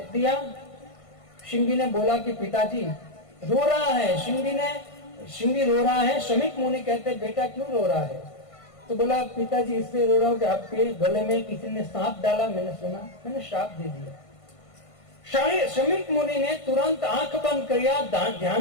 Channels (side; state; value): right; late; 1.5 ms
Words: दिया। श्रृंगी ने बोला कि पिताजी रो रहा है। श्रृंगी रो रहा है। शमीक मुनि कहते बेटा क्यों रो रहा है? तो बोला पिताजी इसलिए रो रहा हूं कि आपके गले में किसी ने सांप डाला, मैंने सुना, मैंने श्राप दे दिया। शमीक मुनि ने तुरंत आंख बंद किया, ध्यान